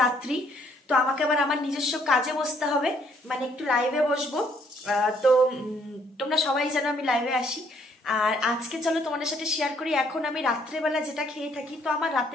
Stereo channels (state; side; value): normal; both; correlation 0.66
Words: রাত্রি। তো আমাকে আবার আমার নিজস্ব কাজে বসতে হবে, মানে একটু লাইভে বসবো। তো তোমরা সবাই যেন আমি লাইভে আসি। আর আজকে চলো তোমাদের সাথে শেয়ার করি, এখন আমি রাত্রেবেলা যেটা খেয়ে থাকি। তো আমার